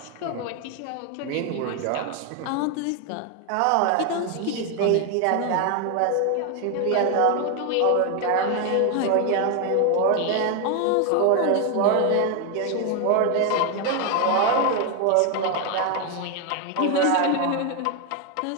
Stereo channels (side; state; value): both; different; correlation 0.01